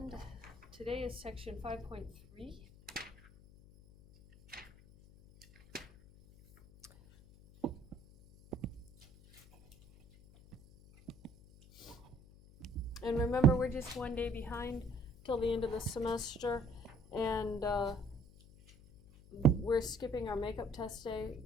today is section 5.3. And remember, we're just one day behind till the end of the semester, and we're skipping our makeup test day.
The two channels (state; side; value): noise; left; hum, 22 dB below the sound